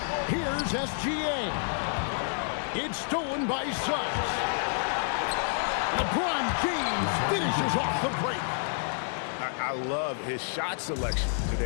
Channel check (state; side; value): silent; right; 58 dB below the other